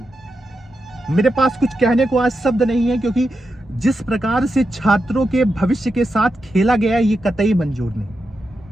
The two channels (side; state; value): both; normal; correlation 0.87